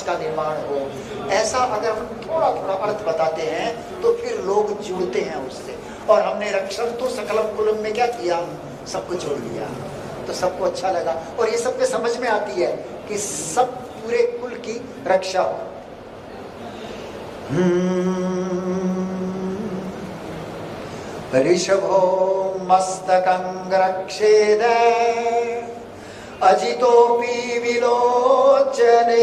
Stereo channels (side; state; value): both; identical; correlation 1.00